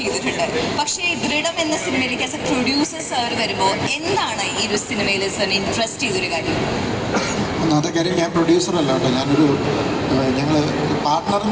പക്ഷേ ദൃഢം എന്ന സിനിമയിലേക്ക് ആസ് എ പ്രൊഡ്യൂസർ സാർ വരുമ്പോൾ എന്താണ് ഈ ഒരു സിനിമയിൽ സാറിന് ഇൻട്രസ്റ്റ് ചെയ്തൊരു കാര്യം? ഒന്നാമത്തെ കാര്യം, ഞാൻ പ്രൊഡ്യൂസറല്ല കേട്ടോ, ഞാനൊരു ഞങ്ങൾ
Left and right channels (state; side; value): identical; both; correlation 1.00